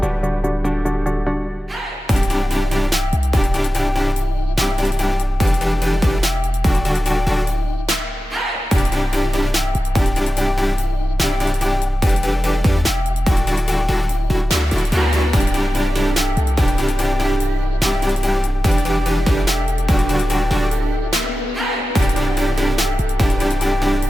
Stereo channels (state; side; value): normal; both; correlation 0.93